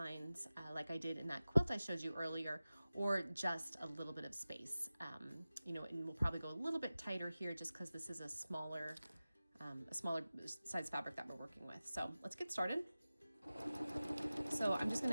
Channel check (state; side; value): inverted; both; correlation -0.96